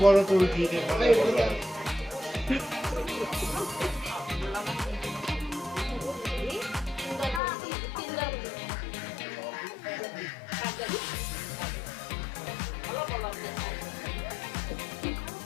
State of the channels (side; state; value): right; drops out; at 7.4 s